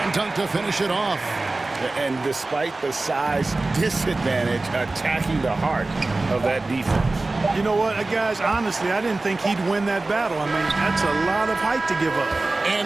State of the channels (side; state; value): left; quieter; 3.2 dB